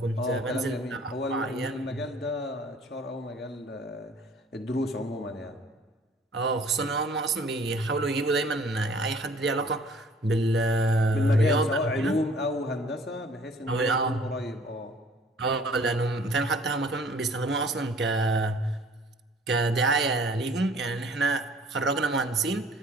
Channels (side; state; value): both; normal; correlation 0.53